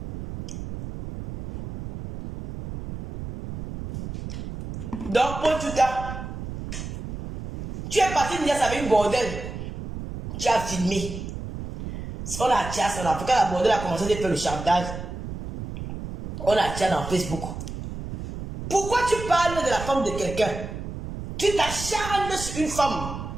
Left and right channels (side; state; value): right; noise; rumble, 8 dB below the sound